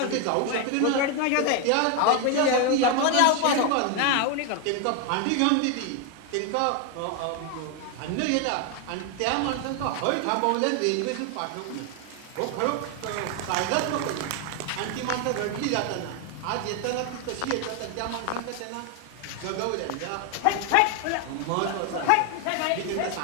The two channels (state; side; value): different; both; correlation 0.01